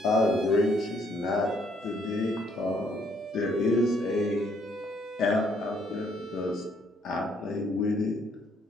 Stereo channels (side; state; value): both; normal; correlation 0.67